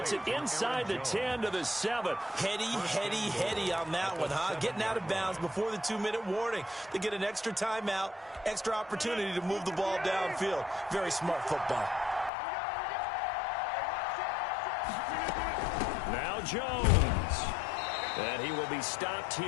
it inside the 10 to the 7. Heady on that one, huh? Getting out of bounds before the 2-minute warning. They get an extra timeout, extra opportunity to move the ball downfield. Very smart football. Now Jones. And he will be stopped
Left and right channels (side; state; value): right; drops out; at 12.3 s